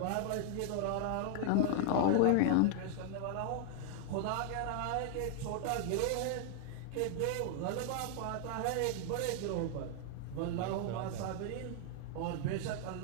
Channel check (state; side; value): different; both; correlation 0.00